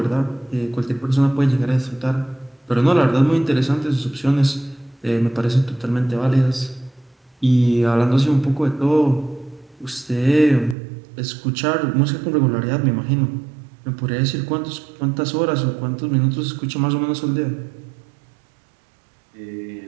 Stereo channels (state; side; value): drops out; left; at 10.8 s